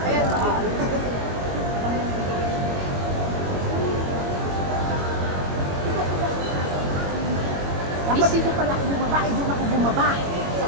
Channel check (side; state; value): left; late; 21 ms